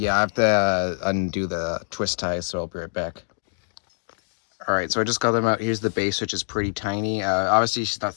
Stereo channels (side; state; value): right; silent; digital silence